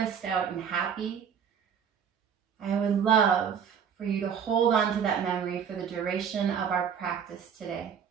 out and happy, I would love for you to hold on to that memory for the duration of our practice today.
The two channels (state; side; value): quieter; left; 7.6 dB